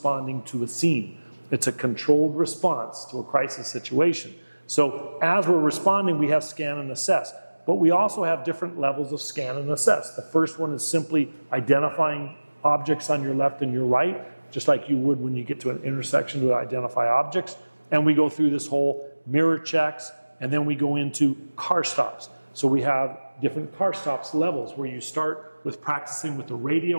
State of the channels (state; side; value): inverted; both; correlation -1.00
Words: to a scene. It's a controlled response to a crisis situation. So as we're responding, we have scan and assess. But we also have different levels of scan and assess. The first one is simply identifying objects on your left and your right, just like you would when you get to an intersection to identify objects. And we go through this whole mirror checks, and then we go into car stops. So we have different car stops levels where you start with practicing with the